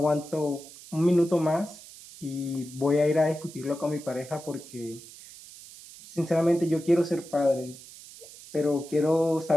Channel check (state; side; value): noise; right; hiss, 18 dB below the sound